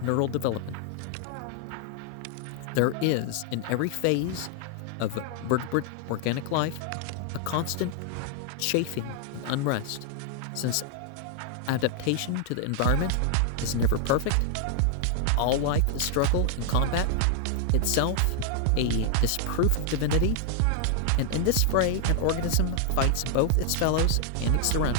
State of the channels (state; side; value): different; both; correlation 0.00